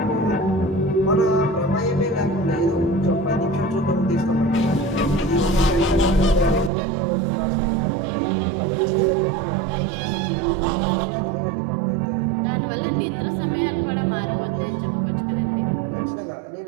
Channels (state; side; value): drops out; left; at 6.7 s